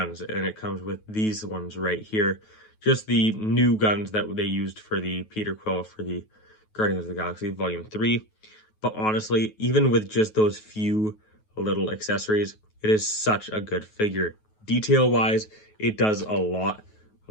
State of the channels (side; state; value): right; late; 9.3 ms